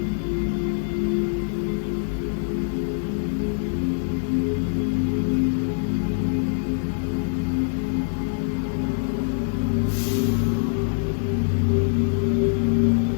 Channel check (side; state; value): right; silent; digital silence